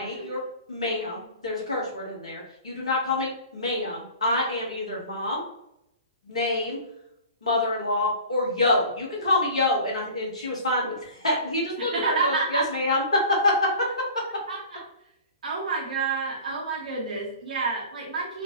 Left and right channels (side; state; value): both; inverted; correlation -0.41